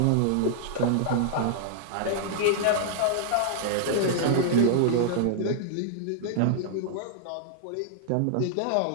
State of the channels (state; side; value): different; both; correlation -0.01